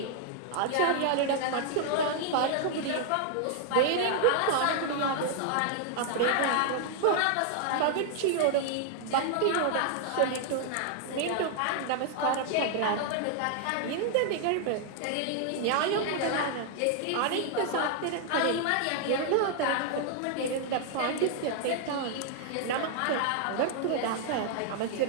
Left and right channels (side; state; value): both; different; correlation 0.00